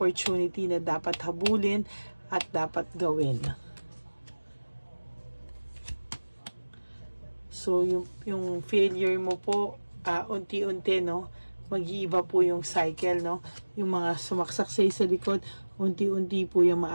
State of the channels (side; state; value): both; inverted; correlation -1.00